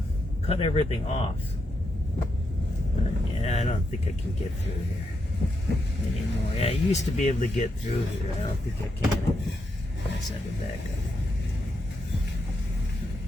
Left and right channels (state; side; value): normal; both; correlation 0.82